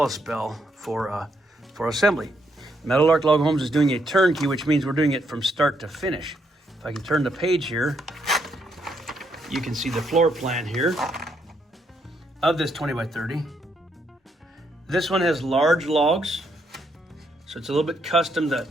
for assembly. Meadowlark Log Homes is doing a turnkey, which means we're doing it from start to finish. If I can turn the page here, you can see the floor plan here of this 20 by 30. This one has large logs, so it's a little bit custom. That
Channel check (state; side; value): normal; both; correlation 0.75